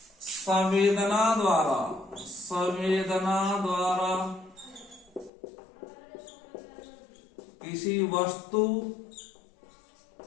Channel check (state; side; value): drops out; right; at 5.3 s